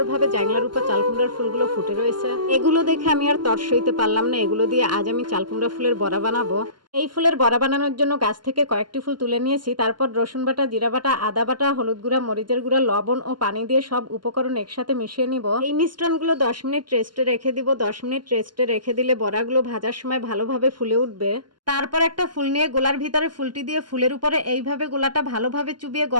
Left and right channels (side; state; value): left; late; 0.71 ms